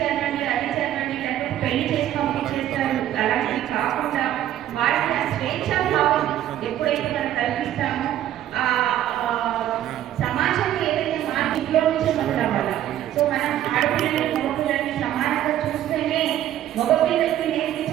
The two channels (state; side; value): quieter; left; 12.1 dB